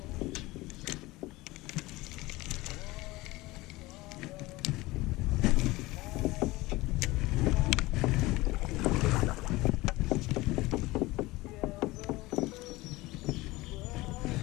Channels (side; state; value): right; quieter; 20.3 dB